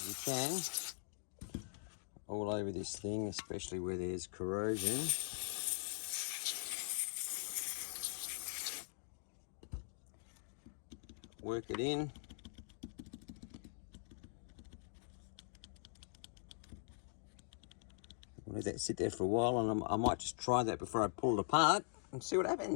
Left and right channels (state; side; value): silent; right; digital silence